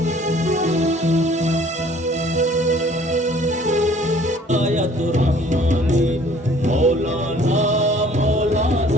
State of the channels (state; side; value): normal; both; correlation 0.55